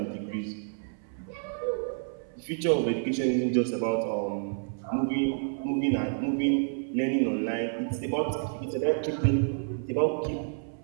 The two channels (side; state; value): left; silent; 58 dB below the other